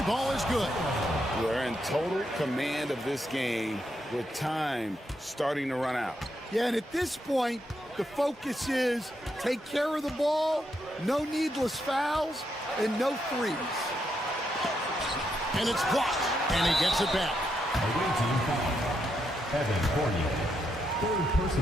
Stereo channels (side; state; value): both; normal; correlation 0.80